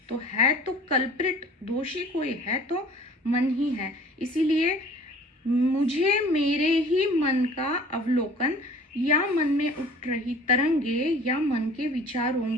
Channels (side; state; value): both; normal; correlation 0.48